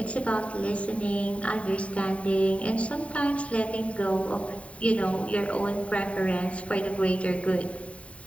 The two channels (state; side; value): late; right; 0.064 ms